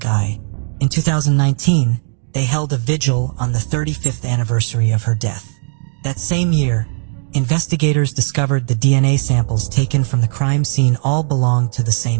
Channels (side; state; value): left; silent; 66 dB below the other